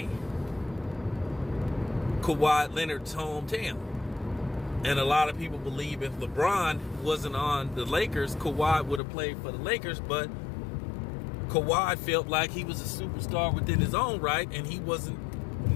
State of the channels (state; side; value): drops out; right; at 9.0 s